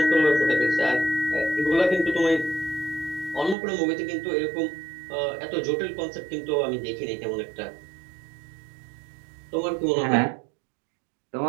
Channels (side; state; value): left; drops out; at 3.6 s